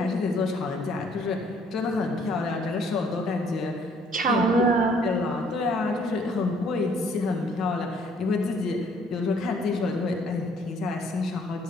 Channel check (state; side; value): normal; both; correlation 0.62